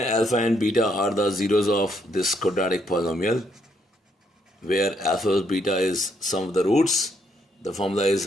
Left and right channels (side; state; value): both; normal; correlation 0.73